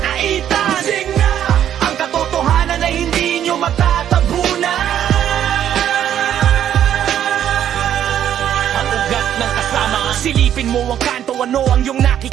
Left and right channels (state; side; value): quieter; left; 10.3 dB